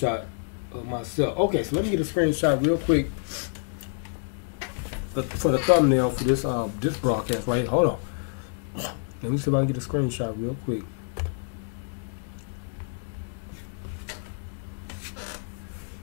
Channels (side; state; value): right; silent; 60 dB below the other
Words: of myself. Okay, so let me get a screenshot real quick for the thumbnail for this broadcast right here. Hold on. Let me see if I can get a screenshot real quick.